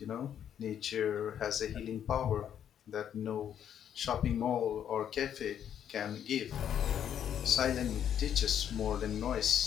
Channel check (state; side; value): quieter; right; 9.4 dB